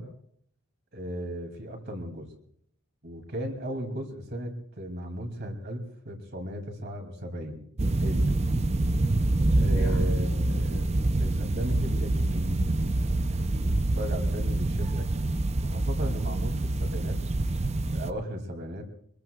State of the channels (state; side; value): normal; both; correlation 0.90